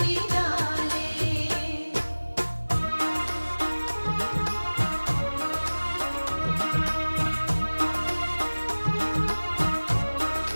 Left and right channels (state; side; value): inverted; both; correlation -1.00